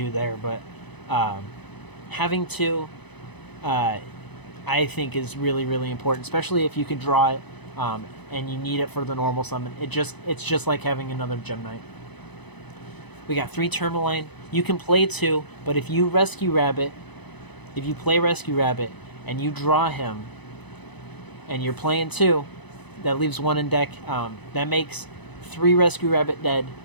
there. But having 2, I think, is really, really important, especially if you can draw it and you need it for the normal summon. It's just like having another Gem Knight. We got 3 Tourmaline. You can play 2, but if you play Rescue Rabbit and you draw him, and you're playing 2, that leaves 1 in deck. That makes 3 Rescue Rabbit dead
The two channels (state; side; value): late; right; 1.0 ms